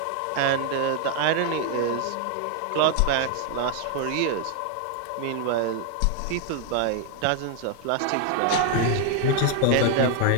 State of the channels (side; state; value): both; different; correlation 0.00